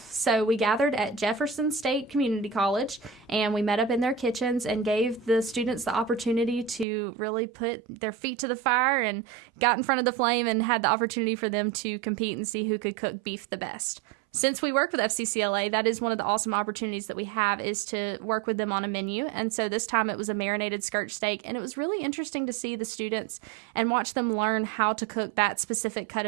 So we gathered at Jefferson State Community College, and we met up in their kitchens and gave the students the opportunity to really put their feet to the fire and got in front of the flame and had the opportunity for them to compete and see who could cook beef the best. since we work with FCCLA, that is one of the awesome opportunities that we have, is to work with them on a menu. And so this time it was a marinated skirt steak, and it was really interesting to see the students and watch them learn how to cook that specific cut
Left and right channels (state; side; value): drops out; left; at 6.9 s